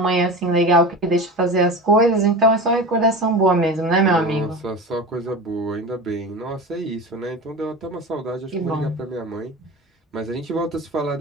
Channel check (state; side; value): normal; both; correlation 0.30